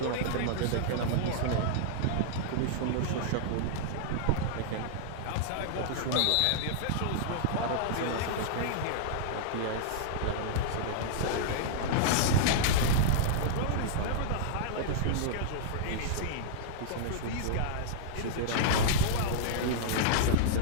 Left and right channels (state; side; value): different; both; correlation -0.02